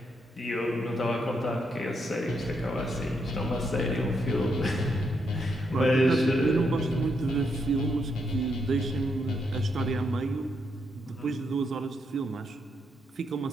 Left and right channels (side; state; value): both; normal; correlation 0.79